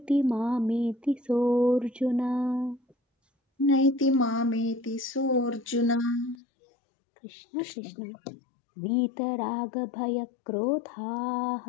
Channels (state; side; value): drops out; right; at 6.4 s